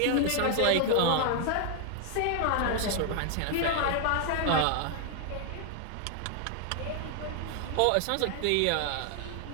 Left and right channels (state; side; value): different; both; correlation 0.00